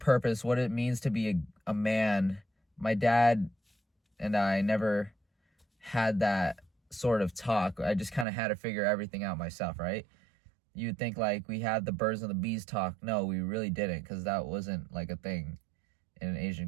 what it means to be a man. My dad and I never had that sort of talk. I just kind of had to figure everything out myself, right? You'd think like we had the birds and the bees talk. No, we really didn't, because that wasn't like a thing in an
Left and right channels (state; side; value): drops out; left; at 8.2 s